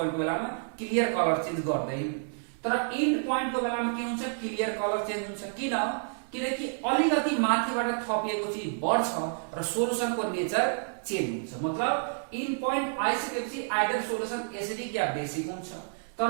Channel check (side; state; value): left; silent; digital silence